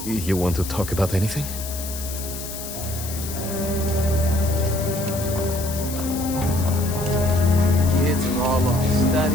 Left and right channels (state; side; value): noise; left; hiss, 9 dB below the sound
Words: You want to talk about anything? Kids are all off